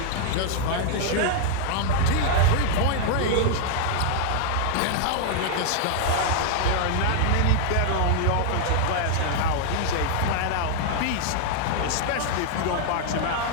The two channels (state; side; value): different; both; correlation 0.00